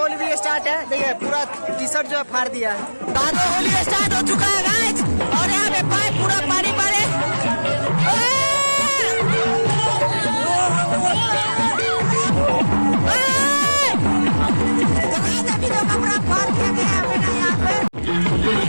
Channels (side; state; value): both; inverted; correlation -1.00